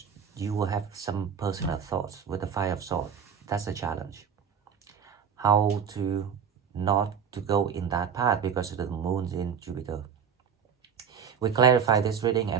you will have some personal thoughts with the Five of Swords. That's a challenge. how to not to go in that path because the moon's in Jupiter. We clarify this reading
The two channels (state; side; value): quieter; left; 7.2 dB